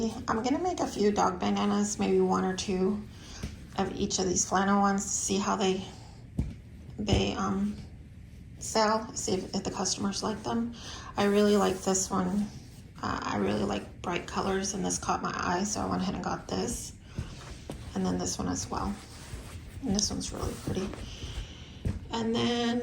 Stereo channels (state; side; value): identical; both; correlation 1.00